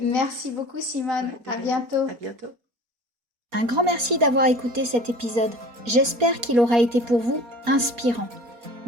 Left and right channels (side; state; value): left; late; 4.2 ms